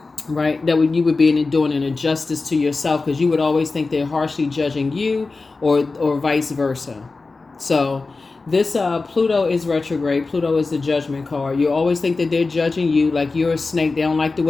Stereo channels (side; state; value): right; quieter; 3.8 dB